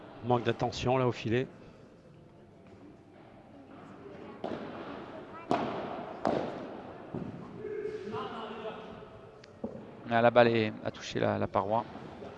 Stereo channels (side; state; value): both; identical; correlation 1.00